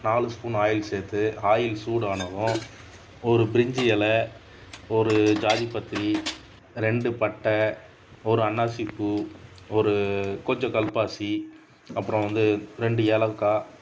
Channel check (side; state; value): both; identical; correlation 1.00